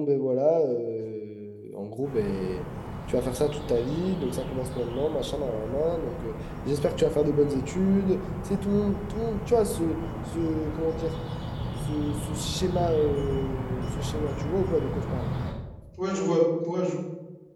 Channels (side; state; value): both; identical; correlation 1.00